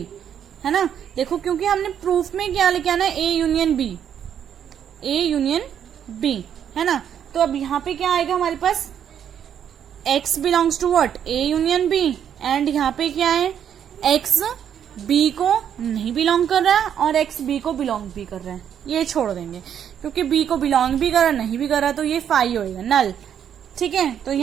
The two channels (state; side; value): quieter; left; 9.0 dB